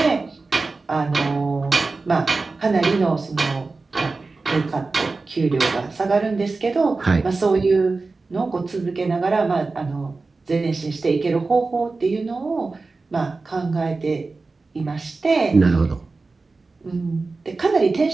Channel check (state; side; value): quieter; left; 3.8 dB